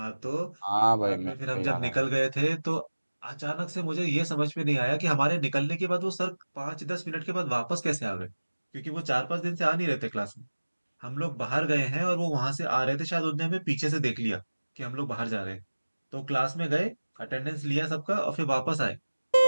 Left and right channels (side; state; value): both; inverted; correlation -1.00